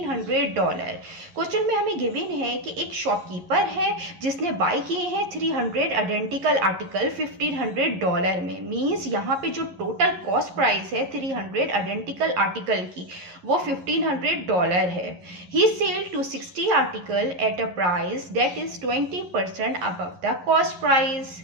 Question में हमें गिवन है कि एक शॉपकीपर है जिसने बाय किए हैं 300 आइडेंटिकल आर्टिकल $1500 में। मीन्स यहाँ पे जो टोटल कॉस्ट प्राइस है 300 आइडेंटिकल आर्टिकल की वो $1500 है। He sell to 60 article at a price that is 20% above the cost price.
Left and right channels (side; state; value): left; late; 11 ms